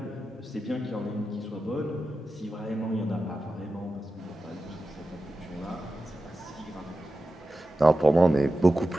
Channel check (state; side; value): normal; both; correlation 0.93